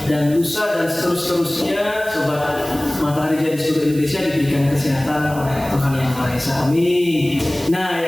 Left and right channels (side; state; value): right; noise; hiss, 16 dB below the sound